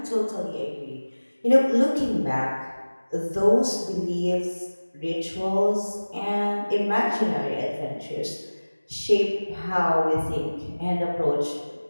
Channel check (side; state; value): both; inverted; correlation -1.00